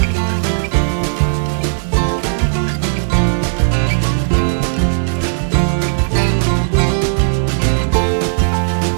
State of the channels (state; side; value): silent; left; digital silence